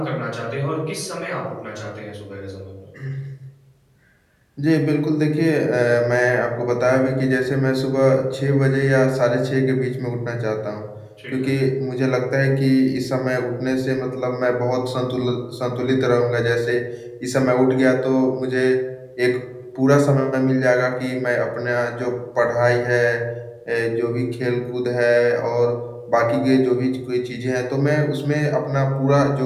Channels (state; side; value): identical; both; correlation 1.00